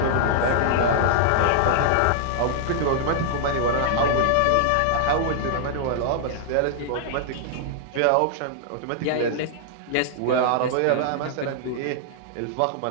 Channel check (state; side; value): different; both; correlation -0.01